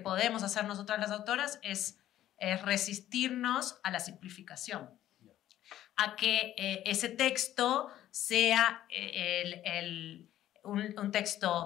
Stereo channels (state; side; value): quieter; right; 12.8 dB